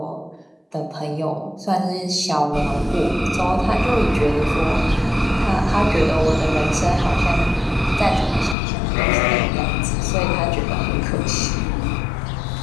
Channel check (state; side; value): drops out; right; at 8.6 s